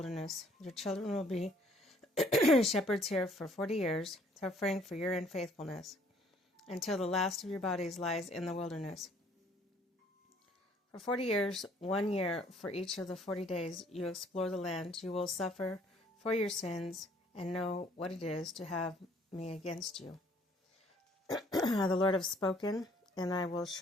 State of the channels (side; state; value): both; normal; correlation 0.61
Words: Your children will be shepherds here for 40 years, suffering for your unfaithfulness, until the last of your bodies lies in the wilderness. For 40 years, 1 year for each of the 40 days you explore the land, you will suffer for your sins and know what it is to have me against you. The Lord has spoken, and I will